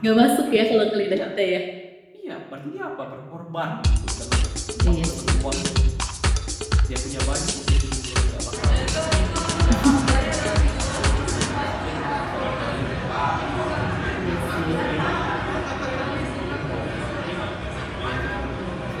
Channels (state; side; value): identical; both; correlation 1.00